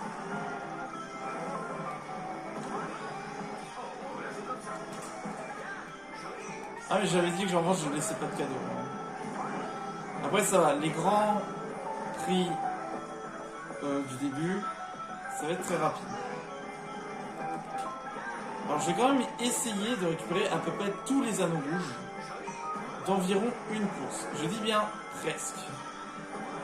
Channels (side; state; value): both; identical; correlation 1.00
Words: Ah mais j'avais dit que genre je laissais pas de cadeaux. Après ça va, les grands prix du début, ça va être très rapide. Alors je vais quand même essayer de récupérer à peu près tous les anneaux rouges d'environ une course. Je dis bien presque.